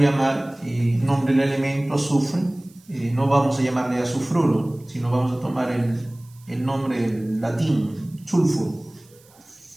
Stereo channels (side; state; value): right; noise; hiss, 28 dB below the sound